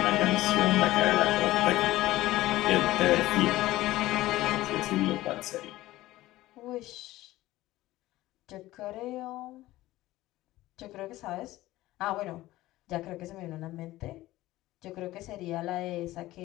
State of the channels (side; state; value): right; quieter; 16.8 dB